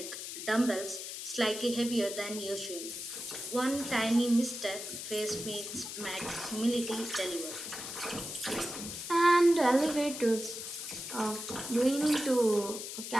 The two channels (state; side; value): noise; left; hiss, 8 dB below the sound